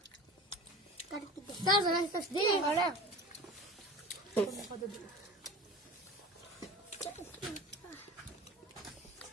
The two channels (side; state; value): both; normal; correlation 0.36